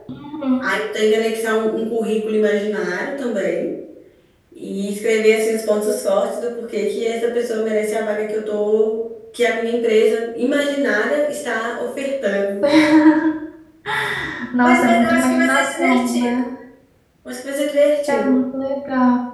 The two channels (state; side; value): identical; both; correlation 1.00